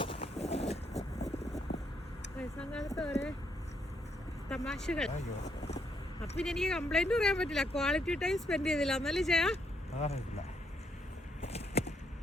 തമാശകൾ. അപ്പൊ പിന്നെ എനിക്ക് കംപ്ലൈന്റ് പറയാൻ പറ്റില്ല. ക്വാളിറ്റി ടൈം സ്പെൻഡ് ചെയ്തില്ല എന്നല്ലേ ചെയ്യാ.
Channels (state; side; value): normal; both; correlation 0.74